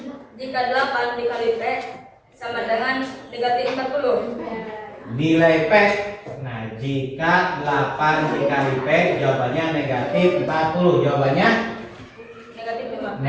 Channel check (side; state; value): both; identical; correlation 1.00